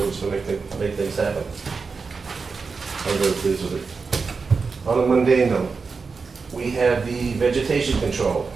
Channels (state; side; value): quieter; left; 4.8 dB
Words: to make things happen. I'm very pleased with it. On a mundane note, we have the vegetation control,